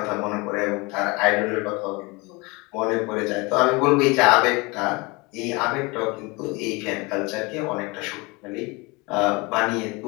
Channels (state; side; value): quieter; right; 26.2 dB